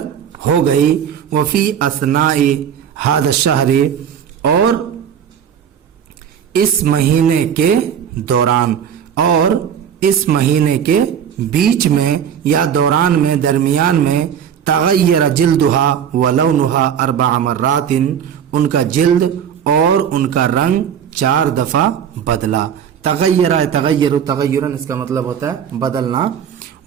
ہو گئی۔ وفی اثناء ھذا الشہر، اور اس مہینے کے دوران، اور اس مہینے کے بیچ میں یا دوران میں، درمیان میں، تغیر جلدہا ولونہا 4 مرات، ان کا جلد اور ان کا رنگ 4 دفعہ بدلا۔ تغیرن اس کا مطلب ہوتا ہے بدلنا،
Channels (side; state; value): left; quieter; 8.5 dB